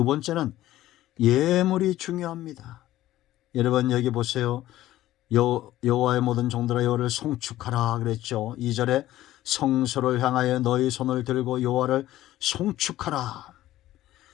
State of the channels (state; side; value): quieter; right; 14.7 dB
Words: 번째는 예물이 중요합니다. 여러분 여기 보세요. 여호와의 모든 종들아 여호와를 송축하라 그랬죠. 2절에 성소를 향하여 너희 손을 들고 여호와를 송축하라.